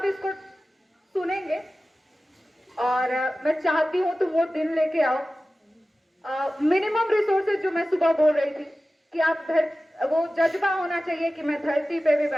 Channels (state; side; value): normal; both; correlation 0.95